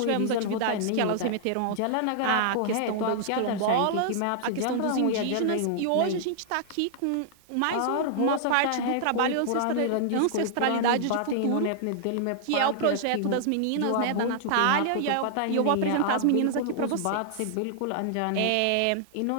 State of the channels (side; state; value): both; different; correlation -0.01